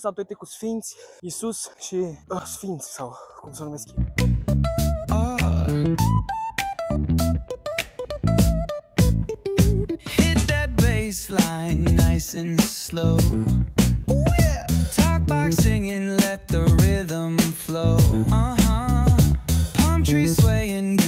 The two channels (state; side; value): identical; both; correlation 1.00